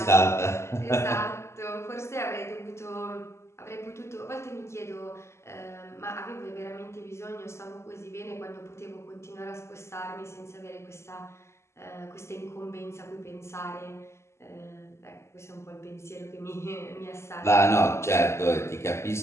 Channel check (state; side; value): late; right; 0.13 ms